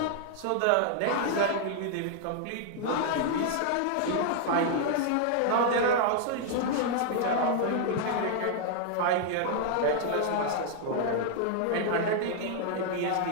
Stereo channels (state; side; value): different; both; correlation 0.00